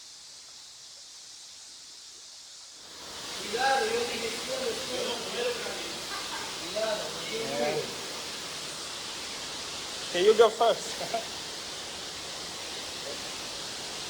Okay, you go first.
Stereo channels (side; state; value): both; identical; correlation 1.00